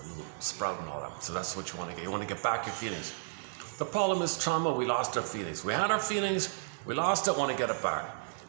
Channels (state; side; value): silent; left; 56 dB below the other